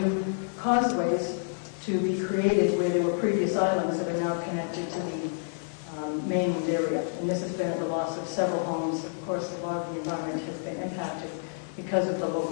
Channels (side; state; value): right; silent; digital silence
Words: causeways to be created where there were previous islands that are now connected to the mainland area. And this has been at the loss of several homes. Of course, a lot of the environment has been impacted because of the